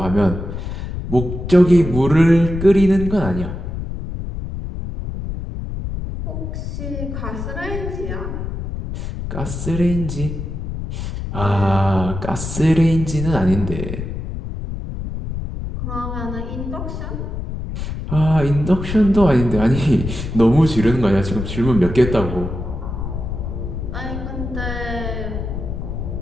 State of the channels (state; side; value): noise; left; rumble, 6 dB below the sound